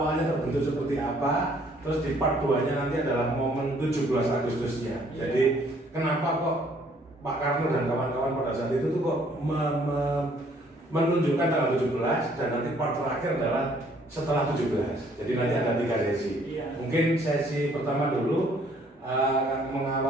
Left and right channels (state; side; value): normal; both; correlation 0.62